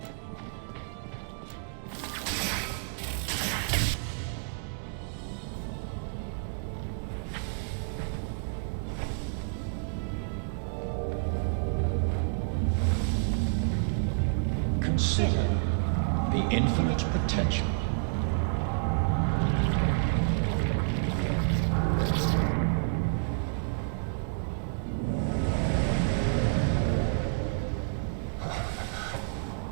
Consider the infinite potential.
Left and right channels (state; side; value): silent; left; digital silence